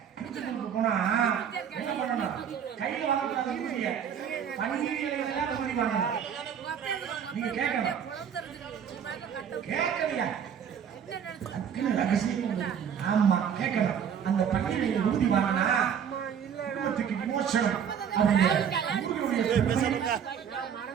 திருச்செந்தூருக்கு போனா என்ன பண்ணணும்? கையில வாங்கக்கூடாது, பண்டிகைகள் வாங்கணும். நீங்க கேட்கலையா? ஆமா கேட்கணும். அந்த பண்டிகையை உறுதி வாங்கினா விமோசனம்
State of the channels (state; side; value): quieter; left; 8.1 dB